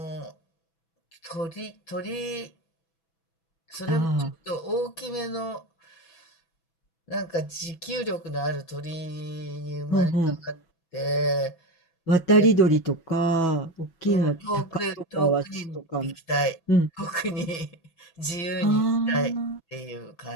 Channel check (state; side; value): late; right; 6.1 ms